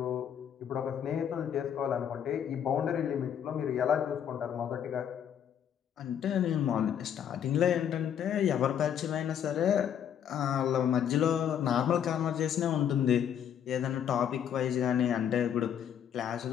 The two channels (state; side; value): quieter; right; 9.0 dB